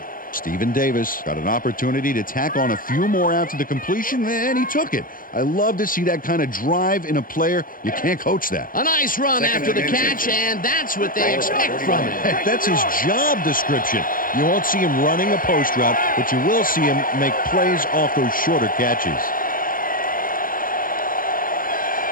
Stephen Davis got an opportunity to tack on a few more after the completion, and he took it. I love to see that kind of drive in a player. You can't coach that. A nice run after the catch, and that's what they expect from him. Heck, that's his job description. You won't see him running a post route, but you will see him make plays off those shorter catches.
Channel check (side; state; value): right; late; 0.40 ms